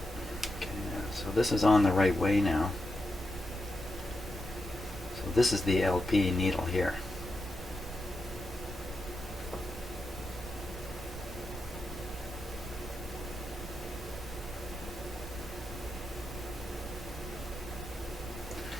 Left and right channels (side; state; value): both; normal; correlation 0.87